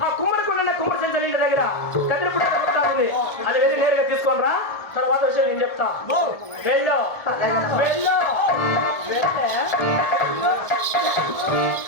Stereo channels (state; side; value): late; right; 1.4 ms